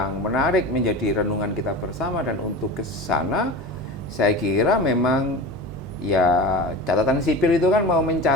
menarik, menjadi renungan kita bersama, dan untuk ke sana saya kira memang ya catatan sipil itu kan mau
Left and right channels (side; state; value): both; normal; correlation 0.31